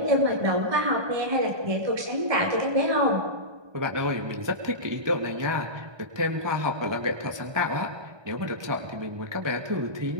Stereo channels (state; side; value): late; left; 1.2 ms